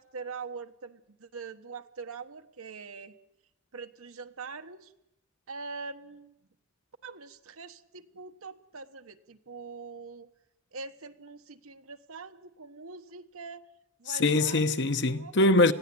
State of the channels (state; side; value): normal; both; correlation 0.13